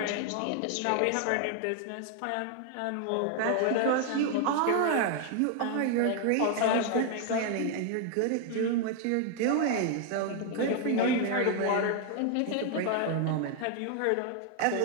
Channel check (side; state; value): both; different; correlation 0.00